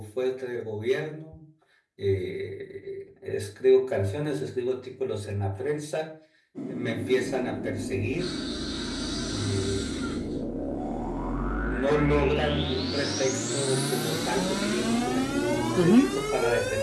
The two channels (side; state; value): both; identical; correlation 1.00